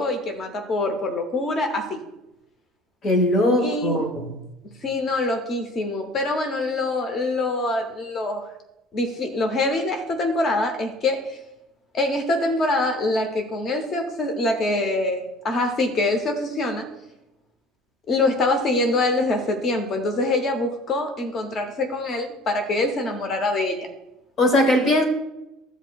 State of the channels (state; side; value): normal; both; correlation 0.48